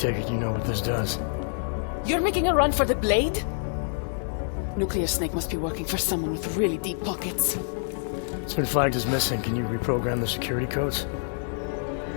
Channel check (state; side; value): silent; right; digital silence